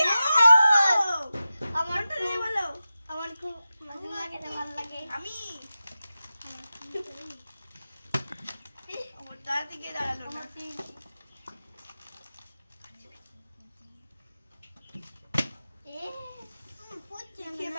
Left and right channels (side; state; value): both; inverted; correlation -0.94